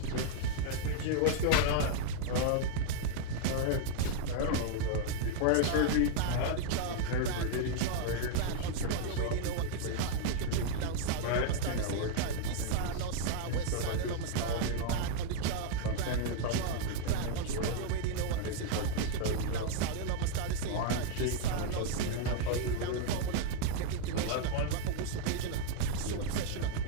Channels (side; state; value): both; different; correlation -0.01